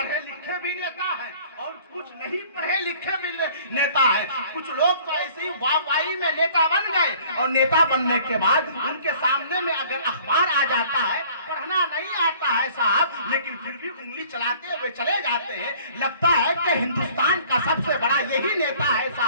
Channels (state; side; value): inverted; both; correlation -0.53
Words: لکھے بھی نیتا ہیں اور کچھ نہیں پڑھے لکھے بھی نیتا ہیں۔ کچھ لوگ تو ایسے ہی وائی میں نیتا بن گئے، اور نیتا بننے کے بعد ان کے سامنے میں اگر اخبار آ جاتا ہے، پڑھنا نہیں آتا ہے صاحب، لیکن پھر بھی انگلی چلاتے ہوئے چلے جاتے ہیں۔ لگتا ہے کہ ہندوستان کا سب سے بڑا یہی نیتا ہے